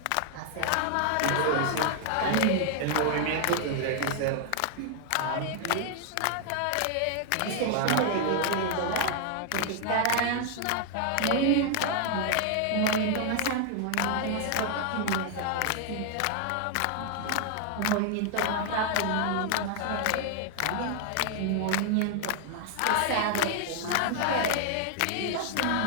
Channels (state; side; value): different; both; correlation 0.00